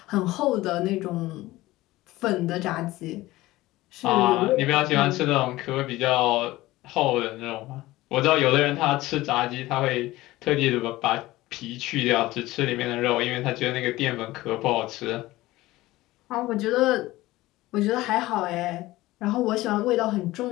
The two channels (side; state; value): right; quieter; 18.0 dB